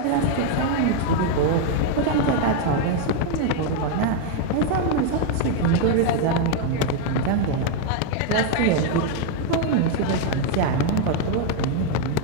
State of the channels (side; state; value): both; different; correlation 0.01